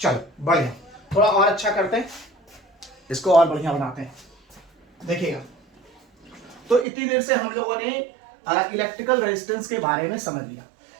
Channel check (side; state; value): left; drops out; at 6.9 s